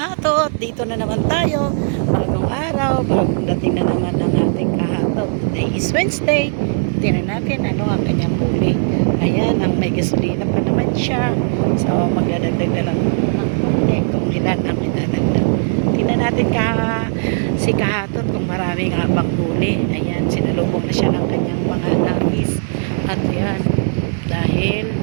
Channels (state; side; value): silent; left; digital silence